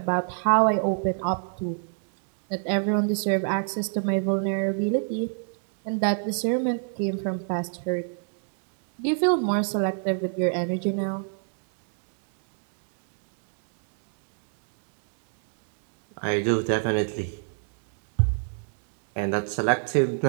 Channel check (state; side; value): silent; left; digital silence